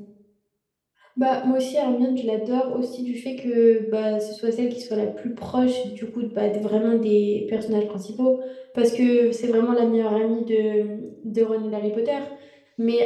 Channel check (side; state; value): both; identical; correlation 1.00